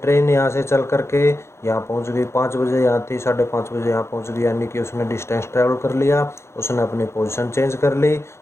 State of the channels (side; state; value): right; late; 0.13 ms